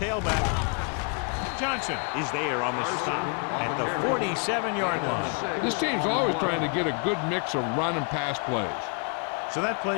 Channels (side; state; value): right; quieter; 38.7 dB